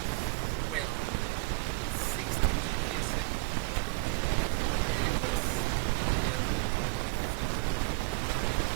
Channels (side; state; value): left; quieter; 26.3 dB